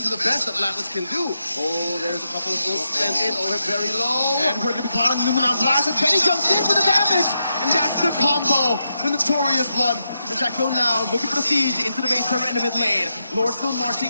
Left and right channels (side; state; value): both; inverted; correlation -0.85